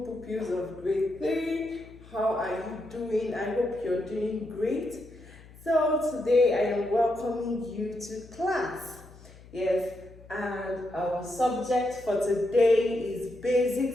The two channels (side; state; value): left; noise; hum, 21 dB below the sound